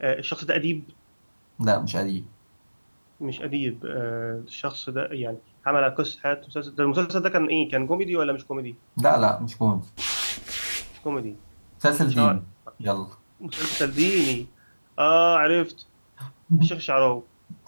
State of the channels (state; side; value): inverted; both; correlation -1.00